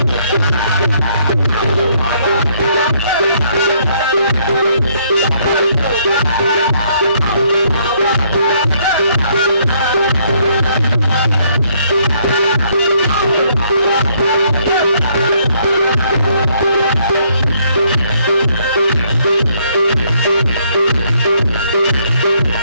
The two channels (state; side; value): inverted; both; correlation -0.68